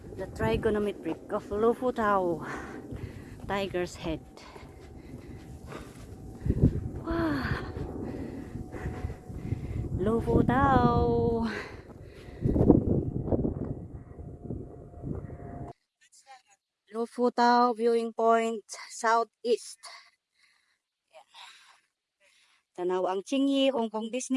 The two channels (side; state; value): both; identical; correlation 1.00